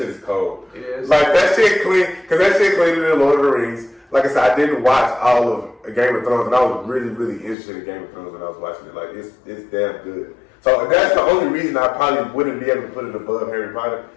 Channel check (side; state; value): right; drops out; at 7.6 s